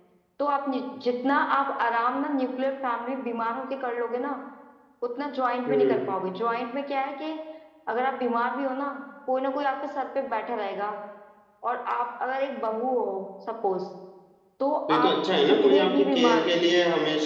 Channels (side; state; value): both; identical; correlation 1.00